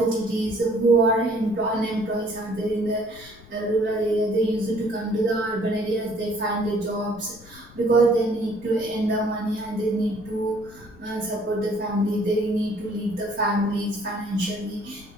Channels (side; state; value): left; noise; rumble, 22 dB below the sound